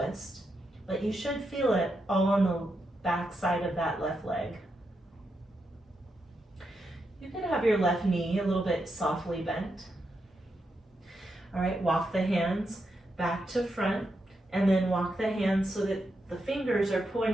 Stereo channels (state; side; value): normal; both; correlation 0.84